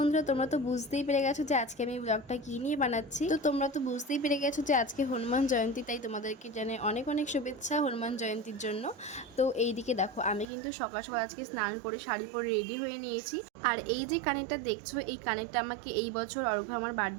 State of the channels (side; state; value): left; drops out; at 10.5 s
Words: তোমরা তো বুঝতেই পেরে গেছো যে আজকে আমি ব্লগটা কী নিয়ে বানাচ্ছি। তো তোমরা তো বুঝতেই পেরে গেছো যে আজকে হনুমান জয়ন্তী, তাই তোমাদেরকে জানাই অনেক অনেক শুভেচ্ছা হনুমান জয়ন্তীর জন্য। তো এইদিকে দেখো, আমি কিন্তু সকাল সকাল আজকে স্নান করে শাড়ি পরে রেডি হয়ে নিয়েছি। আর এই যে কানেরটা দেখছো, এই কানেরটা আমাকে এই বছর অর্ঘ্য আমার